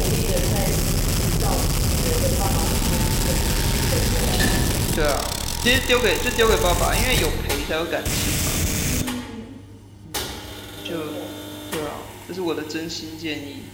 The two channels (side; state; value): both; identical; correlation 1.00